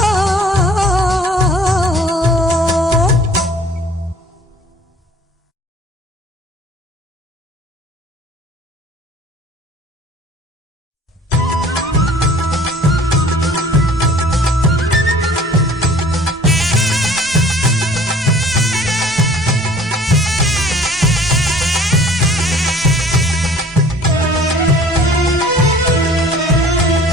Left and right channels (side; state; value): both; normal; correlation 0.50